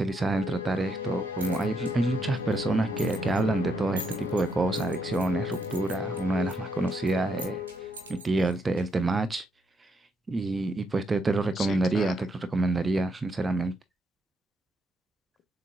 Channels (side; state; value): both; normal; correlation 0.76